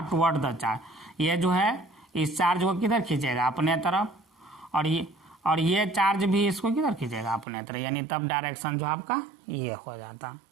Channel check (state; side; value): drops out; left; at 7.5 s